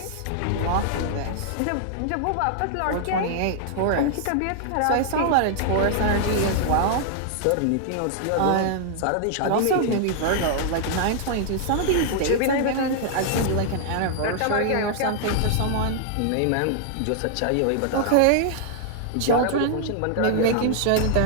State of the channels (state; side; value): different; both; correlation -0.01